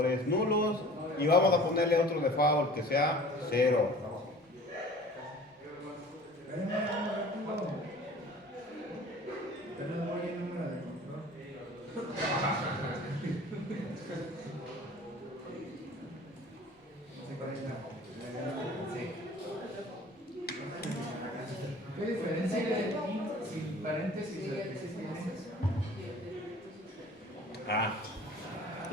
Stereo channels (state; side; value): normal; both; correlation 0.46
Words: nulos. Y vamos a ponerle otro default que sea 0. ¿Qué diferencia hay sin paréntesis de existencias?